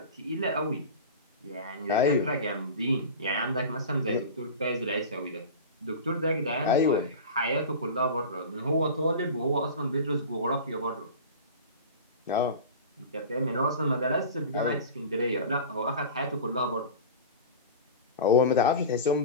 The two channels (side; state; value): both; inverted; correlation -0.31